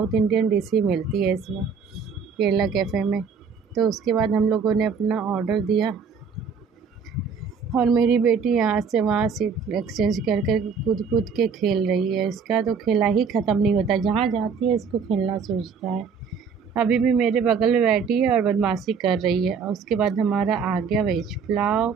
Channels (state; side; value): quieter; left; 5.8 dB